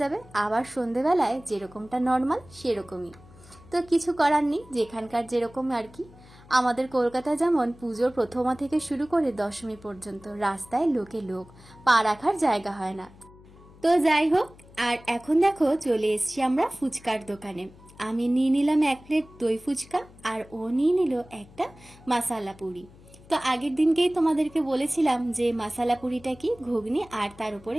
যাবে, আবার সন্ধেবেলায় যেরকমটা নর্মাল সেরকমই। তো কিছু করার নেই, যেখানকার যেরকম আর কি। আমাদের কলকাতায় যেমন পুজোর প্রথমা থেকে শুরু করে দশমী পর্যন্ত রাস্তায় লোকে লোক, পা রাখার জায়গা হয় না। তো যাই হোক, আর এখন দেখো চলে এসছি আমরা ফুচকার দোকানে। আমি নিয়ে নিলাম 1 প্লেট দই ফুচকা, আর ও নিয়ে নিল একটা মশালা পুরি। তো আগের দিনকেই তোমাদেরকে বলেছিলাম যে মশালা পুরিটা কি, ঘুগনি আর তার উপরে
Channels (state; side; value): noise; left; hum, 23 dB below the sound